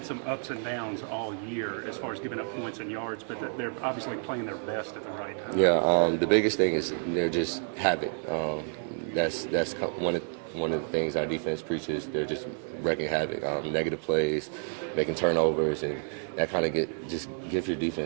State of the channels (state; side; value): silent; left; 58 dB below the other